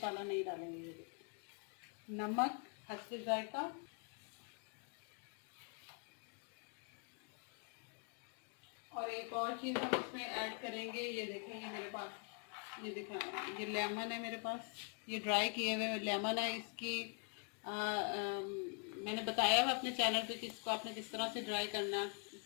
नहीं डालेंगे। नमक हस्बे जायका। और एक और चीज़ हम इसमें ऐड करेंगे, ये देखेंगे मेरे पास ये दिखा ये लेमन है मेरे पास, ये ड्राई किए हुए लेमन है। इसकी मैंने बताया हुआ अपने चैनल पे कि इसको आपने किस तरह से ड्राई करना।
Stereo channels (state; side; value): quieter; right; 39.5 dB